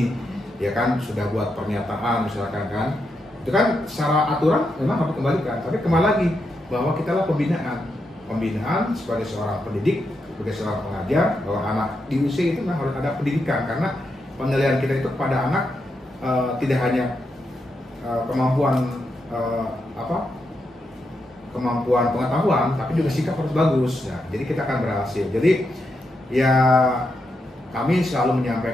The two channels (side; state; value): both; normal; correlation 0.84